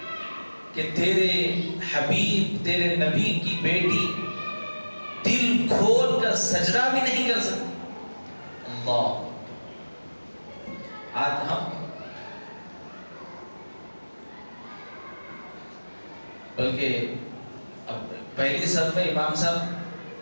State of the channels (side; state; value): both; inverted; correlation -1.00